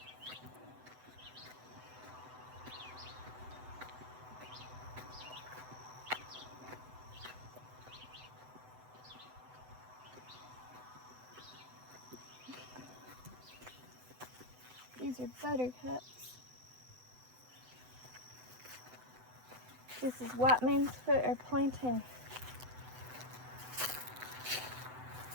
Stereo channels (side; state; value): left; late; 7.9 ms